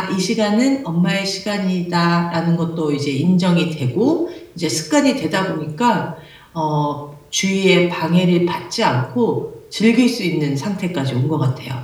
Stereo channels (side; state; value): both; identical; correlation 1.00